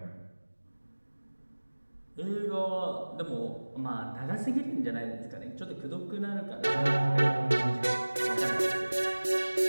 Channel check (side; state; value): both; inverted; correlation -1.00